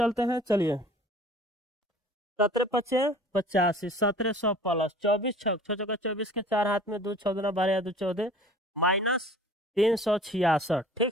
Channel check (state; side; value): normal; both; correlation 0.47